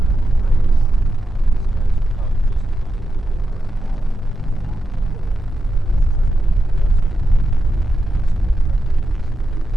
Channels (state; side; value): normal; both; correlation 0.87